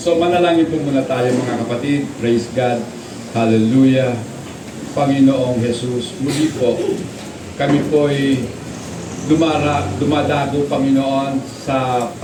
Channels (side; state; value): both; identical; correlation 1.00